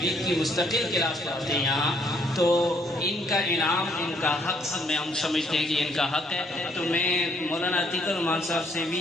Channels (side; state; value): both; normal; correlation 0.67